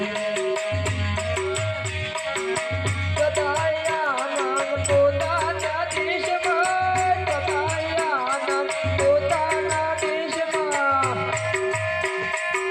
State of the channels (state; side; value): identical; both; correlation 1.00